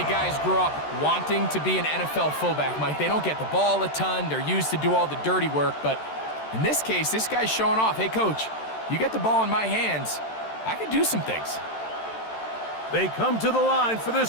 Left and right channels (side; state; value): right; late; 13 ms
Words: guys grew up wanting to be an NFL fullback, Mike. They don't get the ball a ton. They're used to do all the dirty work. But in this case, this guy's showing off, hey, coach, you get the ball in my hands, I can do some things. They come to the line for